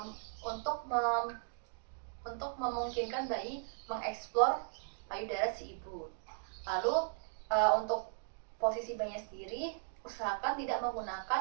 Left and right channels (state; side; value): silent; left; digital silence